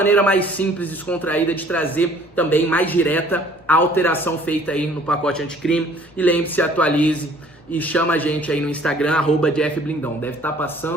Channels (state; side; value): normal; both; correlation 0.55